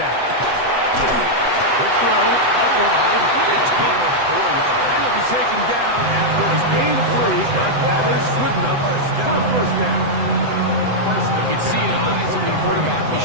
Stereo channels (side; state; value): left; late; 8.0 ms